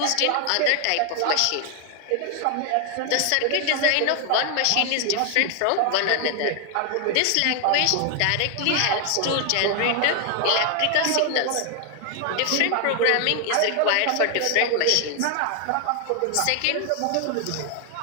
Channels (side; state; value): both; different; correlation 0.00